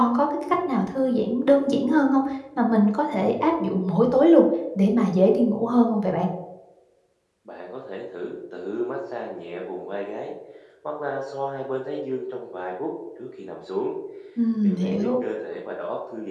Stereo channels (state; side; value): identical; both; correlation 1.00